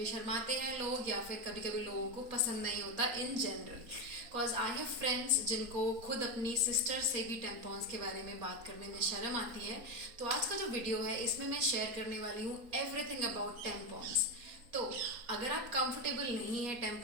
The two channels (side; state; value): left; late; 4.2 ms